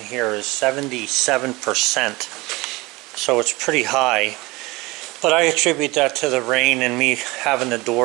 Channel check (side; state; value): left; quieter; 22.7 dB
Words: is 77%. So it's pretty high. But I attribute that to the rain and me having the